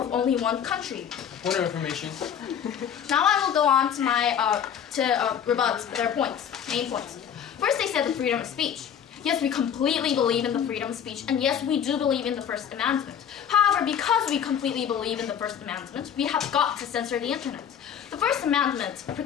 only one country. Point of information. Now I will go on to my rebut their points, main points. First, they said the freedom of speech. Yes, we completely believe in the freedom of speech, and yes, we do believe in the First Amendment. However, because we completely believe in the First Amendment, we have got to censor the internet. The First Amendment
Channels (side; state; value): right; quieter; 8.5 dB